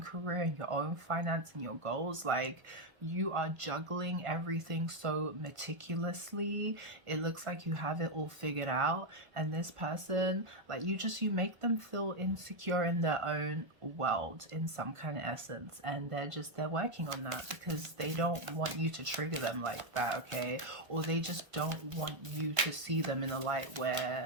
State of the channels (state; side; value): late; left; 1.3 ms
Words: career and your own finance and your goals, like you are juggling everything so meticulously. It looks like you have it all figured out. And this person, like you make them feel insecure in their own world in some kind of essence. And they're working on that because they don't want you to trigger them like that, okay? Or they just don't want you to see them in a light